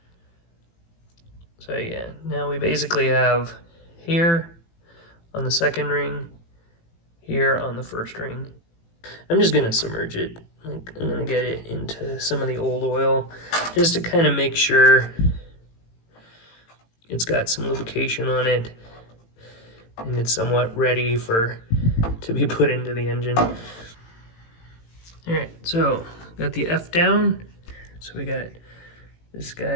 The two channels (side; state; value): right; late; 18 ms